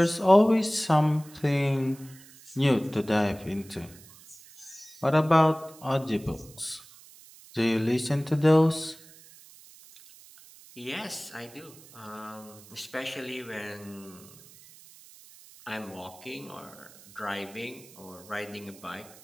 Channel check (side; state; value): right; noise; hiss, 22 dB below the sound